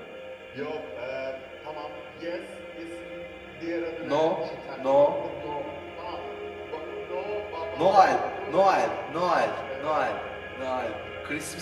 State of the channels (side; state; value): both; identical; correlation 1.00